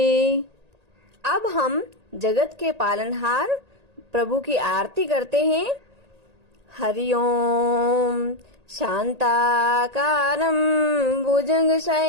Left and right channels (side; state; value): left; late; 1.8 ms